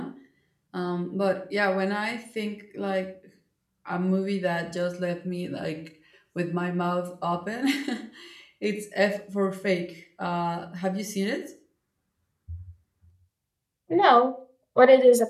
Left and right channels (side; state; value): both; identical; correlation 1.00